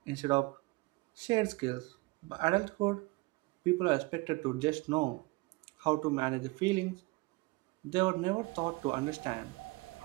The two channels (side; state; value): left; quieter; 24.2 dB